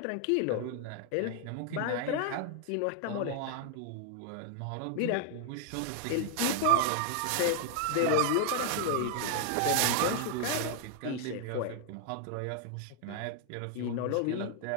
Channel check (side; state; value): both; different; correlation 0.00